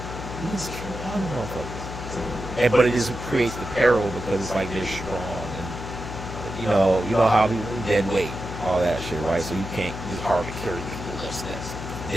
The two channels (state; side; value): noise; left; hum, 8 dB below the sound